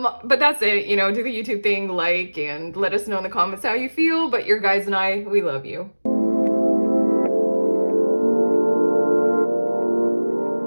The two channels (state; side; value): inverted; both; correlation -1.00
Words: that's it. You know, do the YouTube thing, like, and let us know in the comments how you feel. But your guys and I, we love you.